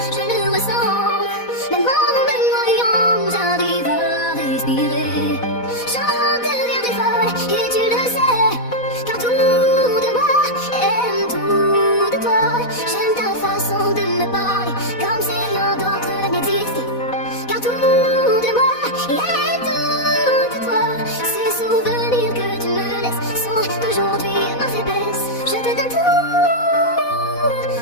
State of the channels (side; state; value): right; late; 4.1 ms